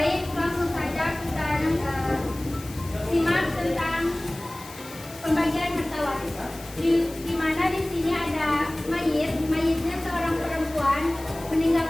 langsung saja kita simak tentang pembagian harta waris. Di mana di sini ada mayitnya seorang perempuan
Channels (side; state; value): left; noise; hiss, 17 dB below the sound